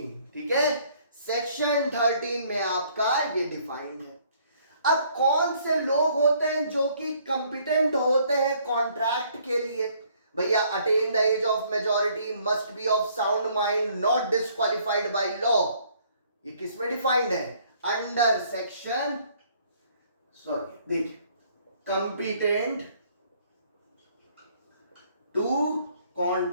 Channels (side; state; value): both; inverted; correlation -0.63